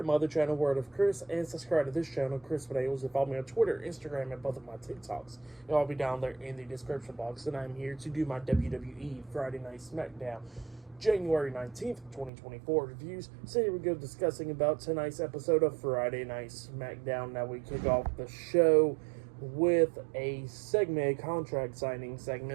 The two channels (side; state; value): left; drops out; at 12.3 s